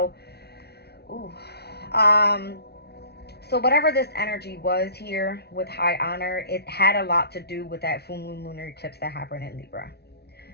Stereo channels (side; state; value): right; late; 0.48 ms